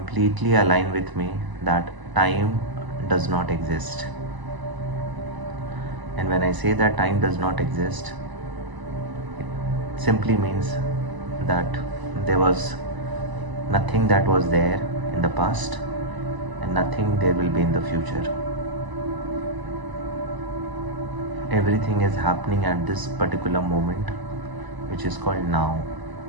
align with me that time does not exist. And when I say that time does not exist, it simply means that there was nothing that was there in the past and nothing there will be in the future. Everything is happening at this particular moment, which is called now.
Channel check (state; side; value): late; left; 1.0 ms